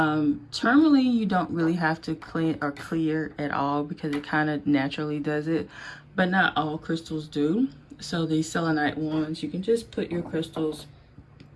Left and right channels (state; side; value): identical; both; correlation 1.00